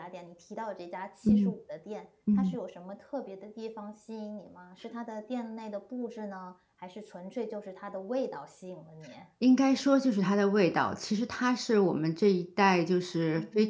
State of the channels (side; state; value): both; identical; correlation 1.00